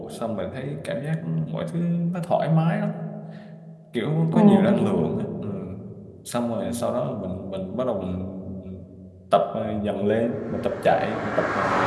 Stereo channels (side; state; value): both; identical; correlation 1.00